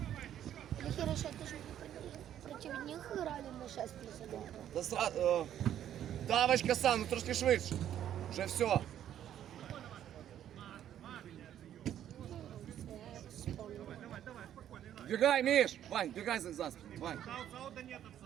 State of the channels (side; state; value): left; quieter; 10.8 dB